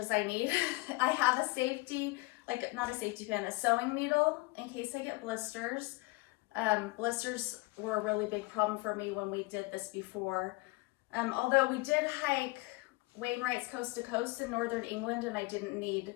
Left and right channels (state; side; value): quieter; right; 23.7 dB